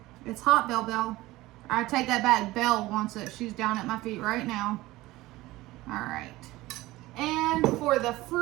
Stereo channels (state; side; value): quieter; left; 18.4 dB